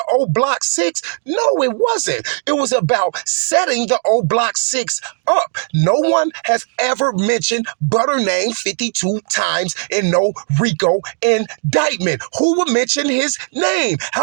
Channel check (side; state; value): left; silent; 61 dB below the other